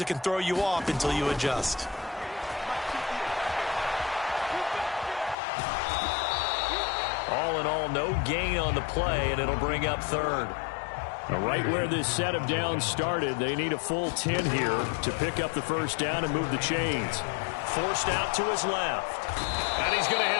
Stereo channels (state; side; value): drops out; right; at 5.4 s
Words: it can throw you off until you adjust. All in all, no gain on the play, and it'll bring up 3rd. Right where this set of downs started, they need a full 10 here to pick up the 1st down and move the chains. Forced out to his left. And he's going to